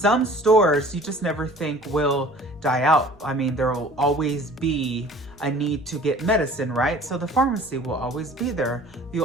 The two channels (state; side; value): noise; right; rumble, 27 dB below the sound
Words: stores you just never think will die out. I mean, there will always be a need to get medicine, right? So the pharmacy will always be there. You'll